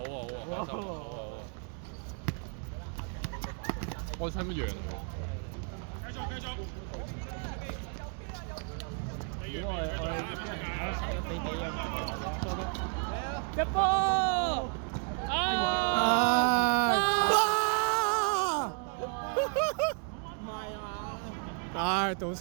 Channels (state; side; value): quieter; left; 39.8 dB